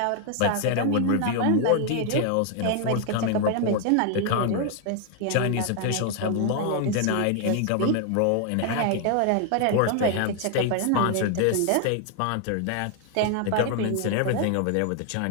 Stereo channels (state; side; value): different; both; correlation 0.00